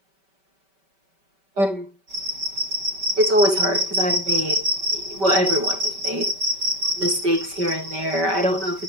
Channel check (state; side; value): late; left; 5.2 ms